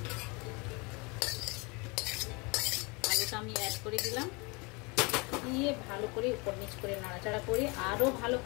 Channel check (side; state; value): right; quieter; 28.6 dB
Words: আলুটা আমি অ্যাড করে দিলাম। দিয়ে ভালো করে উপর নিচ করে নাড়াচাড়া করে আরও ভালো